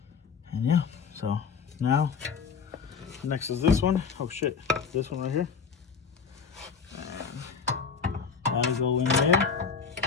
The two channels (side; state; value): right; quieter; 5.8 dB